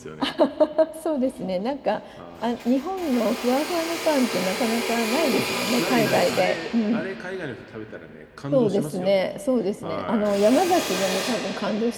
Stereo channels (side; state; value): both; identical; correlation 1.00